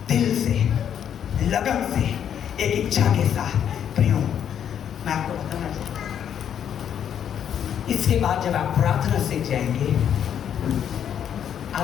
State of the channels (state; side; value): quieter; right; 9.1 dB